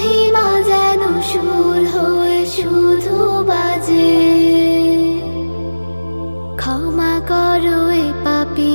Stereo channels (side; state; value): both; inverted; correlation -1.00